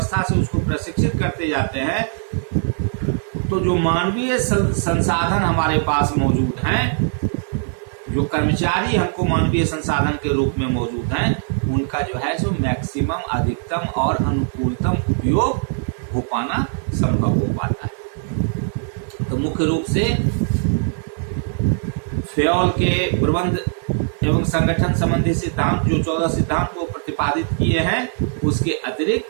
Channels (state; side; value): silent; left; digital silence